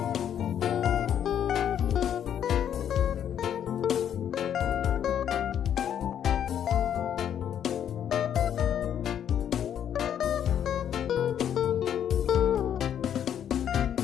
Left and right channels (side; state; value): right; quieter; 9.5 dB